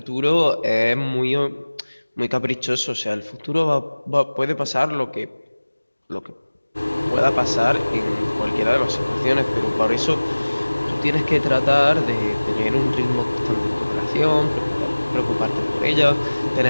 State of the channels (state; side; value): inverted; both; correlation -1.00